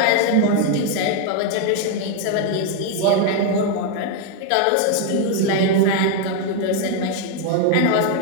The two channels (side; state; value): both; different; correlation 0.01